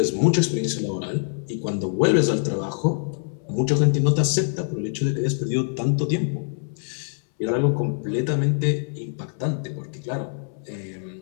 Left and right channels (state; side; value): silent; right; 62 dB below the other